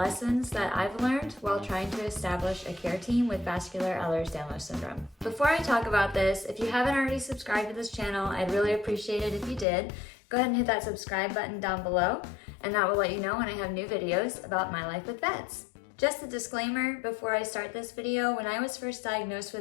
that I've learned while trying to establish a care team with Vascular Ehlers-Danlos syndrome. Before I talk about this, if you haven't already subscribed to this channel, I'd really appreciate it if you did. Go ahead and hit that subscribe button down below and that will let you know when I have new videos about My Life with VEDS. Just a disclaimer before I start this video, when I was first diagnosed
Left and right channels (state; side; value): drops out; right; at 9.7 s